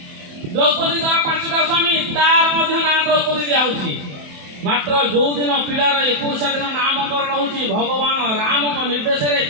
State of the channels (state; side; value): late; left; 28 ms